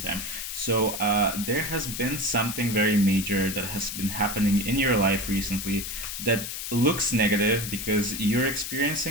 So there has been something very major that has been happening in your life recently that looks negative, because you're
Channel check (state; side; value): noise; left; hiss, 6 dB below the sound